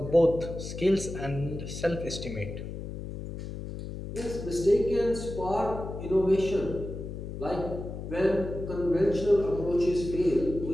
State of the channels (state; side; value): noise; left; hum, 8 dB below the sound